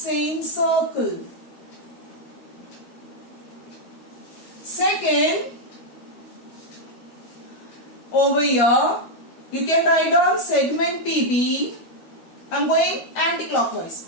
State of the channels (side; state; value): right; late; 13 ms